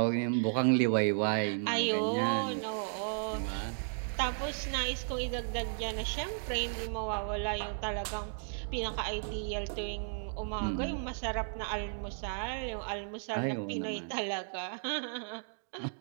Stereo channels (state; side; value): silent; left; digital silence